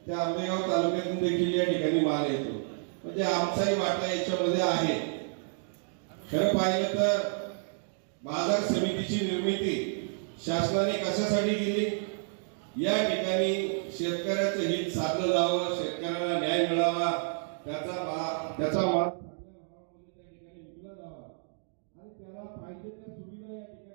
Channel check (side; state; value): left; silent; digital silence